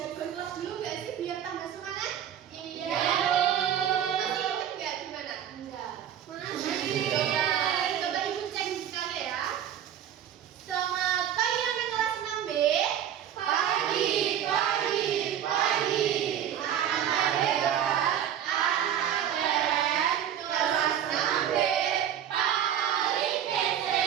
kelas dulu nggak sih biar tambah semangat? Iya. Masih ingat nggak gimana? Enggak. Masih. Coba ibu cek sekali ya. Selamat pagi anak kelas 6B. Pagi, pagi, pagi. Anak hebat, anak keren. Kelas 6B paling kece.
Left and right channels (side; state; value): left; quieter; 9.9 dB